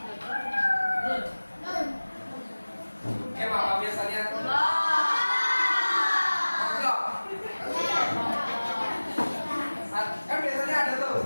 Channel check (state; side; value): inverted; both; correlation -1.00